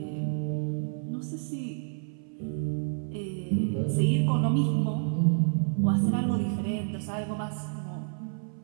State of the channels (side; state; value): left; silent; 58 dB below the other